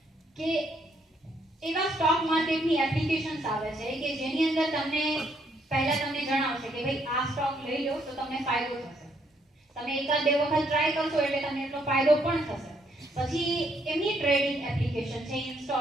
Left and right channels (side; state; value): both; normal; correlation 0.71